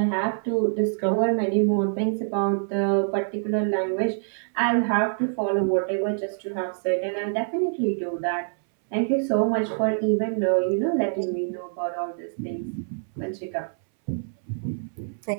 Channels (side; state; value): left; silent; 61 dB below the other